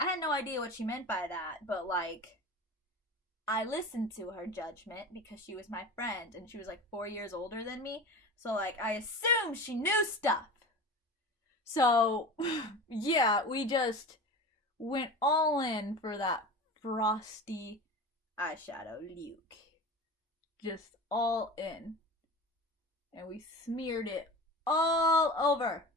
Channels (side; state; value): both; normal; correlation 0.31